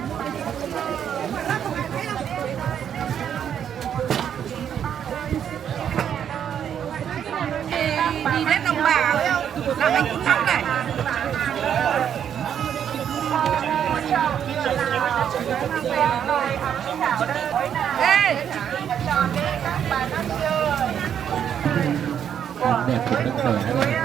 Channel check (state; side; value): quieter; left; 8.9 dB